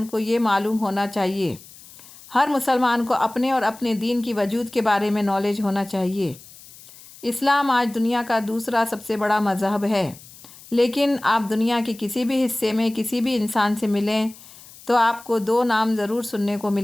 کو یہ معلوم ہونا چاہیے۔ ہر مسلمان کو اپنے اور اپنے دین کی وجود کے بارے میں نالج ہونا چاہیے۔ اسلام آج دنیا کا دوسرا سب سے بڑا مذہب ہے، لیکن آپ دنیا کے کسی بھی حصے میں کسی بھی انسان سے ملیں تو آپ کو دو نام ضرور سننے کو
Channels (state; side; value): noise; left; hiss, 20 dB below the sound